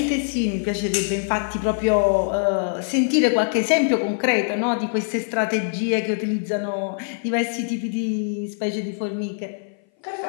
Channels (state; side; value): silent; right; 58 dB below the other